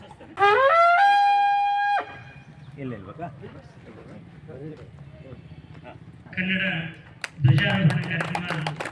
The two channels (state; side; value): identical; both; correlation 1.00